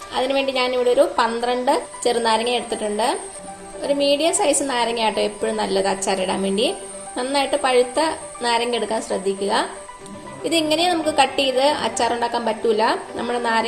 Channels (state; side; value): identical; both; correlation 1.00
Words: അതിനുവേണ്ടി ഞാനിവിടെ ഒരു 12 ചെറുനാരങ്ങ എടുത്തിട്ടുണ്ട്. ഒരു മീഡിയം സൈസ് നാരങ്ങ ആട്ടോ എപ്പോഴും നല്ലത് അച്ചാറിടാൻ വേണ്ടി. നന്നായിട്ട് പഴുത്ത നാരങ്ങ എടുക്കാൻ ശ്രദ്ധിക്കുക. ഇതിങ്ങനെ നമുക്ക് കട്ട് ചെയ്ത് അച്ചാർ ഉണ്ടാക്കാൻ പറ്റൂല. നമ്മുടെ